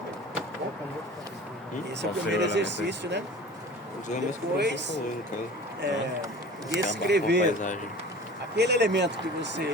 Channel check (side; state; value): both; normal; correlation 0.40